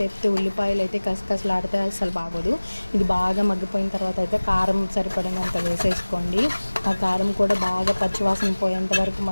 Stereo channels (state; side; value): inverted; both; correlation -1.00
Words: ఉల్లిపాయలు అయితే కసకసలాడితే అసలు బాగోదు. ఇది బాగా మగ్గిపోయిన తర్వాత అయితే కారం సరిపడినంత వేసేసుకోండి. ఆ కారం కూడా బాగా పచ్చివాసన పోయేంత వరకు